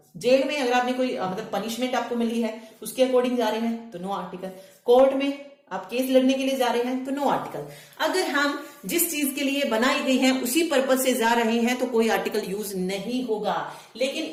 जेल में अगर आपने कोई मतलब पनिशमेंट आपको मिली है उसके अकॉर्डिंग जा रहे हैं तो नो आर्टिकल। कोर्ट में आप केस लड़ने के लिए जा रहे हैं तो नो आर्टिकल। अगर हम जिस चीज के लिए बनाई गई है उसी पर्पज से जा रहे हैं तो कोई आर्टिकल यूज नहीं होगा। लेकिन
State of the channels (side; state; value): both; identical; correlation 1.00